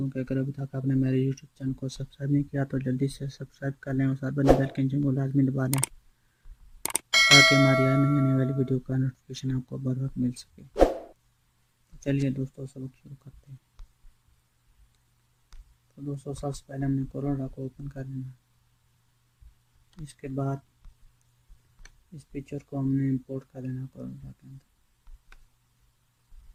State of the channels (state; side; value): identical; both; correlation 1.00